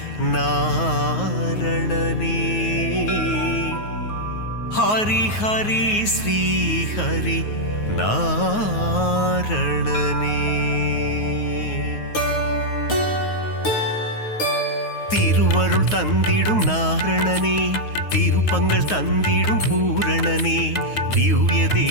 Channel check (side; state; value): right; late; 9.4 ms